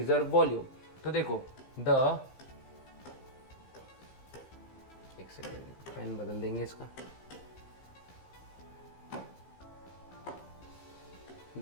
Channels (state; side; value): late; right; 15 ms